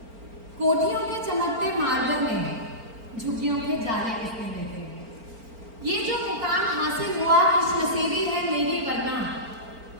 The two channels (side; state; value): left; late; 4.4 ms